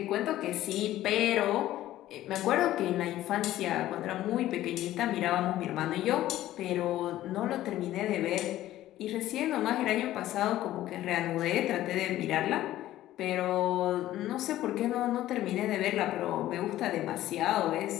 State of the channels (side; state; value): right; quieter; 14.3 dB